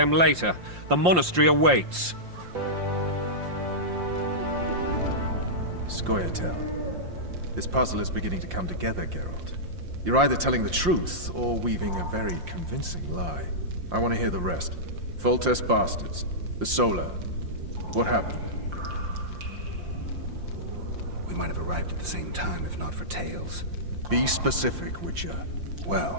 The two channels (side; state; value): left; late; 5.7 ms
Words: later. The monastery awaits. Scoia'tael. This puzzle is beginning to come together, Geralt. You're either telling the truth or weaving a very convincing lie. I want to hear the rest. Foltest bastards. The Solar. What happened? We might have arrived at the same time if not for Tales. Be specific, Witcher.